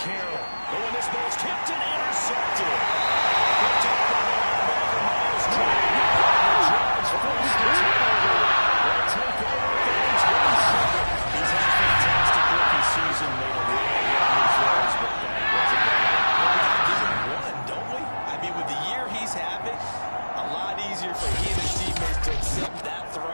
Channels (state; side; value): inverted; both; correlation -1.00